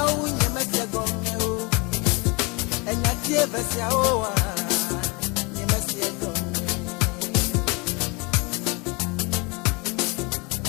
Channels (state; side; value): quieter; right; 28.5 dB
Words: unye mesia gonge o. Enya tie versia owa. Nye mesia gonge.